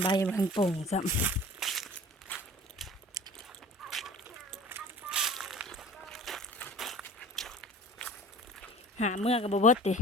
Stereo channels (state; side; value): normal; both; correlation 0.41